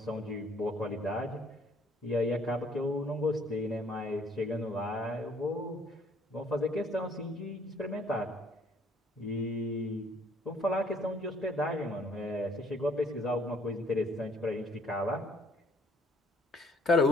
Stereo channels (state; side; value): normal; both; correlation 0.61